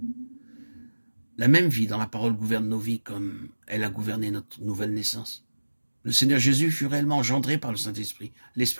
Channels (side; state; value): both; inverted; correlation -1.00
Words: La même vie dans la parole gouverne nos vies comme elle a gouverné notre nouvelle naissance. Le Seigneur Jésus fut réellement engendré par le Saint-Esprit,